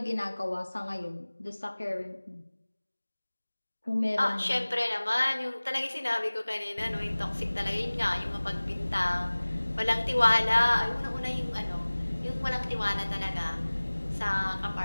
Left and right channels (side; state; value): both; inverted; correlation -1.00